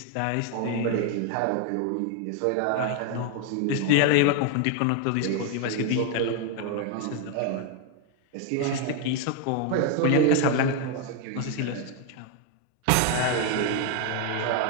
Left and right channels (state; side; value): different; both; correlation 0.01